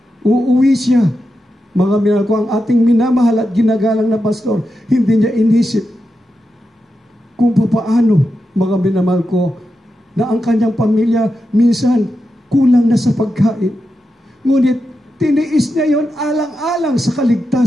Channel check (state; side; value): normal; both; correlation 0.88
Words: uuwi siya. Mga minamahal ko, ang ating minamahal at ginagalang na pastor, hindi niya inisip kung paano, mga minamahal ko, na ang kanyang pamilya minsan kulang na sa pagkain. Ngunit tiniis niya yon alang-alang sa